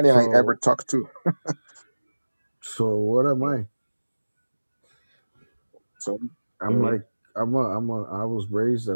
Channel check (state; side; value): inverted; both; correlation -1.00